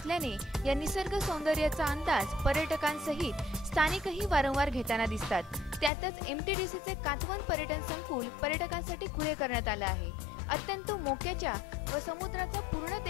या निसर्ग सौंदर्याचा अंदाज पर्यटकांसहित स्थानिकही वारंवार घेताना दिसतात। त्यातच MTDCचे कातवन पर्यटन संकुल पर्यटकांसाठी खुले करण्यात आले आहे। अत्यंत मोक्याच्या व समुद्राचा पूर्ण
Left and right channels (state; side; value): drops out; right; at 5.9 s